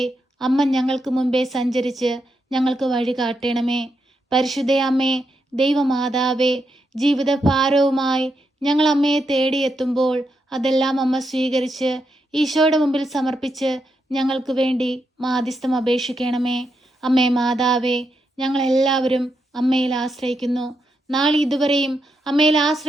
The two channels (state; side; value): normal; both; correlation 0.83